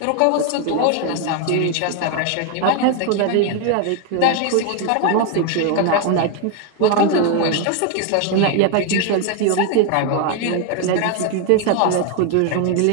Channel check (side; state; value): both; different; correlation 0.01